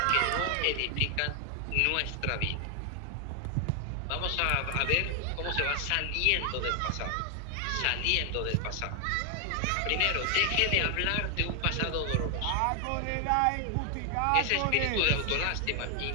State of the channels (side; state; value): both; different; correlation 0.00